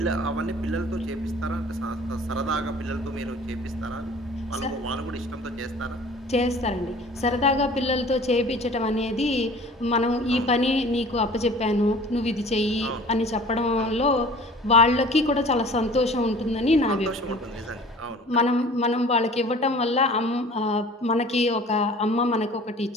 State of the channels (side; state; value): both; normal; correlation 0.46